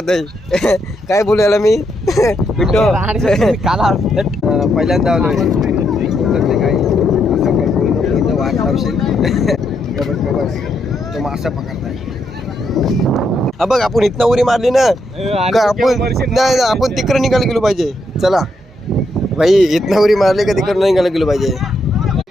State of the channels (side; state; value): both; normal; correlation 0.78